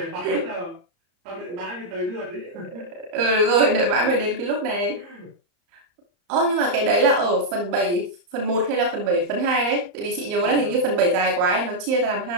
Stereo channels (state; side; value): late; left; 34 ms